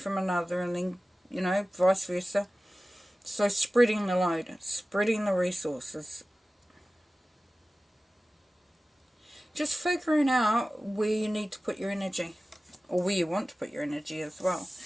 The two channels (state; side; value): normal; both; correlation 0.96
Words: another, and then, you know, vice versa. So spreading the load, spreading the resources. Just figuring out where you need to put your energy, or where you want to put your energy as well.